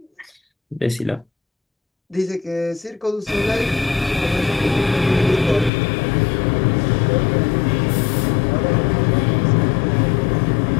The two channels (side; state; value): right; drops out; at 5.7 s